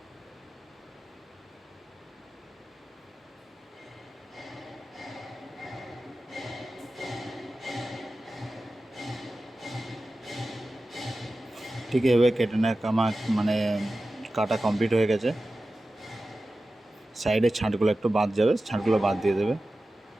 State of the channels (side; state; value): both; normal; correlation 0.94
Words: ঠিক এভাবে কেটে নেয় আমার মানে কাটা কমপ্লিট হয়ে গেছে। সাইডের ছাঁটগুলো একটু বাদ যাবে, ছাঁটগুলো বাদ দিয়ে দেবে।